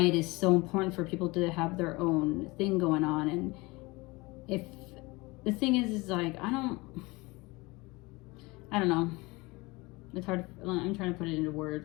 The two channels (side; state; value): right; quieter; 23.8 dB